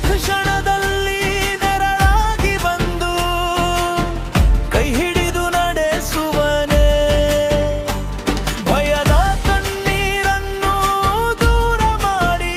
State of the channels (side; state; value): both; identical; correlation 1.00